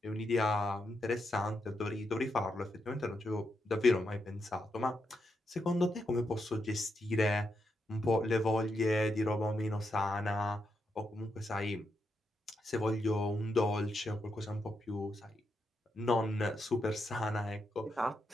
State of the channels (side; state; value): both; normal; correlation 0.83